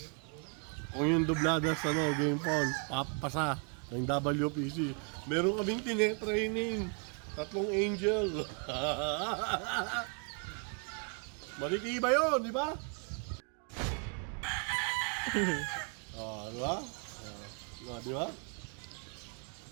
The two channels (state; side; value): quieter; left; 38.5 dB